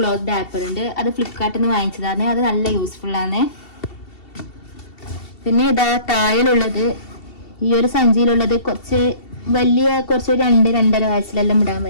ഡാപ്പർ ഉണ്ട്, അത് ഫ്ലിപ്കാർട്ടിൽ നിന്ന് വാങ്ങിച്ചതാണ്. അത് നല്ല യൂസ്ഫുൾ ആണ്. പിന്നെ ഇതാ താഴിലുള്ളത് ഈ ഒരു സഞ്ചിയിലുള്ളത് കുറച്ച് 2-2.5 വയസ്സിലെല്ലാം ഇടാൻ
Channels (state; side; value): late; right; 2.7 ms